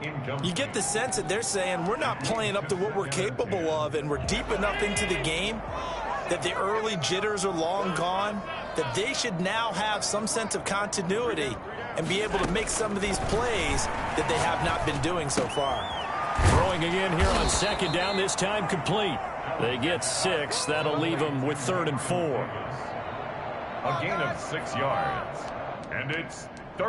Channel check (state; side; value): identical; both; correlation 1.00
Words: You get the sense that they're saying we're not playing up to what we're capable of, and we're deep enough into the game that the early jitters are long gone, that they should now have some sense of continuity and be able to make some of these plays that they have not been doing so far. Throwing again here on 2nd down, this time complete. They get 6. That'll leave them with 3rd and 4. A gain of 6 yards. And it's